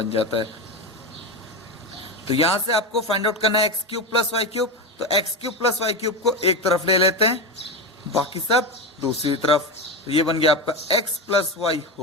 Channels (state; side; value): normal; both; correlation 0.16